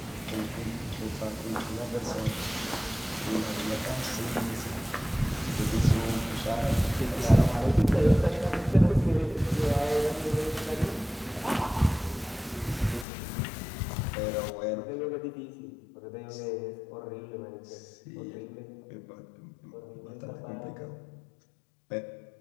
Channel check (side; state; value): right; drops out; at 13.1 s